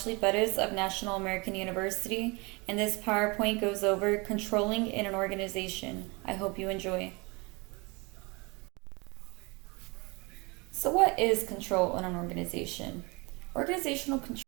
Bettis of National American University, and this PowerPoint goes over controlling in an organization. I hope you enjoy. So, what is control in an organization? Organizational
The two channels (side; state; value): left; quieter; 27.5 dB